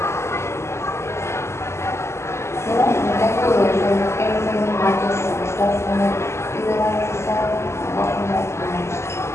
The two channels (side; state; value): right; late; 0.13 ms